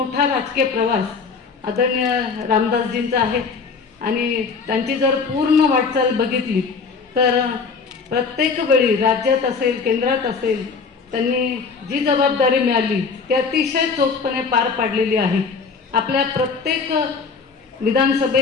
राजकीय प्रवास आदरणीय रामदासजींचा आहे आणि त्यांची जर पूर्ण वाटचाल बघितली तर प्रत्येक वेळी राज्यात असेल, केंद्रात असेल, त्यांनी जी जबाबदारी मिळाली ती अतिशय चोखपणे पार पाडलेली आहे. आपल्या प्रत्येक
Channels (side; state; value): right; quieter; 5.0 dB